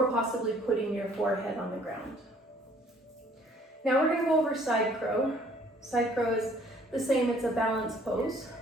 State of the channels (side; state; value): both; normal; correlation 0.59